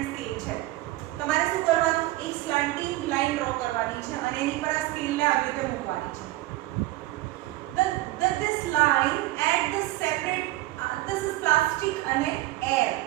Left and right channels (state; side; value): quieter; left; 17.8 dB